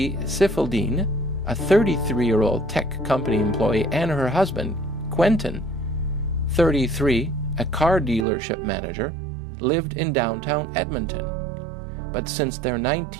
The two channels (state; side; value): drops out; left; at 8.2 s